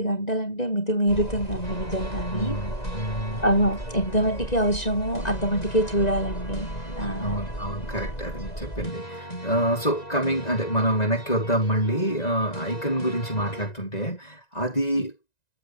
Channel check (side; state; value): right; late; 1.9 ms